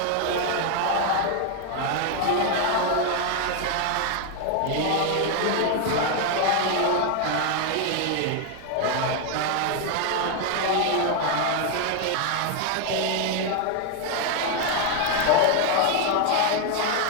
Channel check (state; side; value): different; both; correlation 0.01